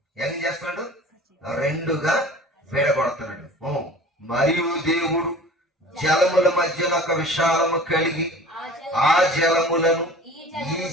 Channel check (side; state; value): both; normal; correlation 0.42